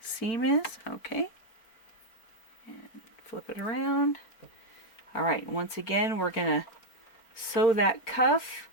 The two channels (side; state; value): right; late; 4.4 ms